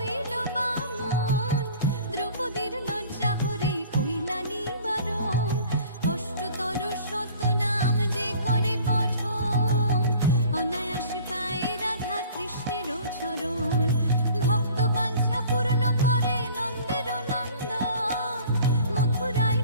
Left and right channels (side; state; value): both; inverted; correlation -0.48